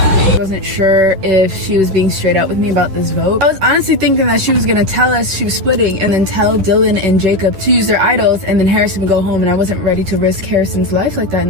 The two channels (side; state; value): left; late; 10 ms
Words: I wasn't sure if she was being straight up with me about this vote. I was honestly thinking that she was gonna tell us she was splitting and then tell Dylan and Jacob to use their idols and then Harrison would go home, and I wasn't ready to risk Harrison's life like that in